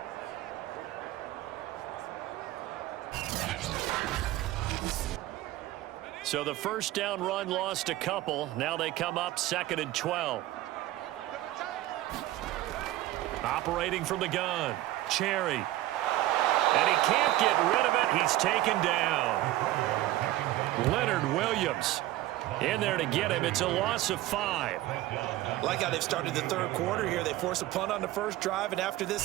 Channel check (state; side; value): quieter; left; 15.8 dB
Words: So the first down run lost a couple. Now they come up 2nd and 12. Operating from the gun. Cherry. And he can't get rid of it. He's taken down. Leonard Williams in there to get him. It's a loss of 5. Like how they've started the third quarter here. They force a punt on the first drive, and after this